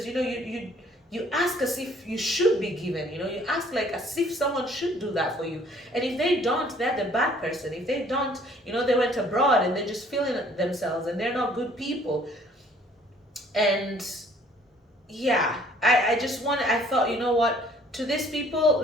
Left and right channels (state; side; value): normal; both; correlation 0.58